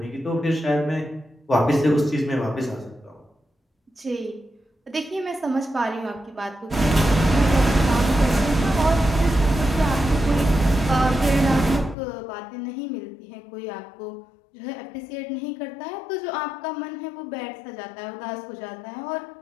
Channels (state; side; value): drops out; right; at 12.0 s